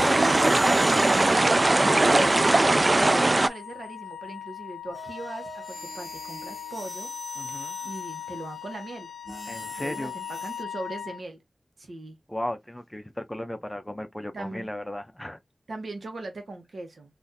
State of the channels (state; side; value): normal; both; correlation 0.97